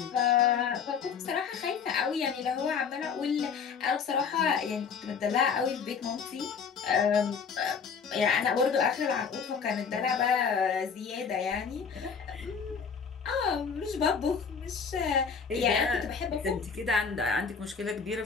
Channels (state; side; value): quieter; right; 6.3 dB